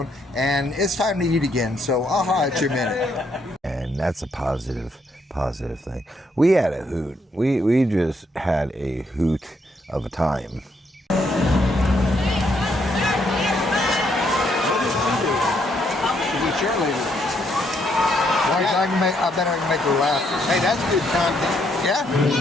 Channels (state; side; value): normal; both; correlation 0.74